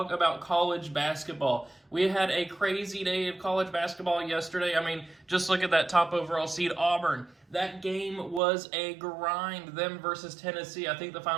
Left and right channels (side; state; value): left; drops out; at 8.4 s